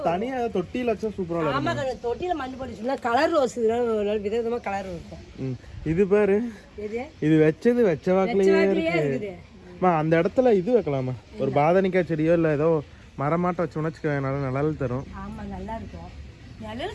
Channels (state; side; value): identical; both; correlation 1.00